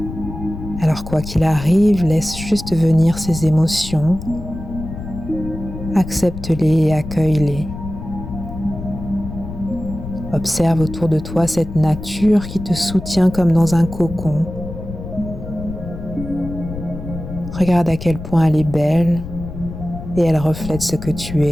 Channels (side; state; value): left; noise; rumble, 10 dB below the sound